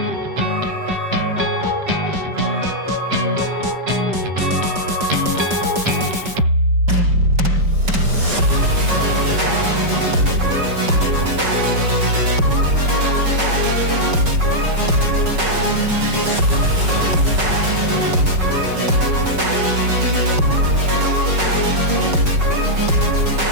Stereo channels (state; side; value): late; left; 5.4 ms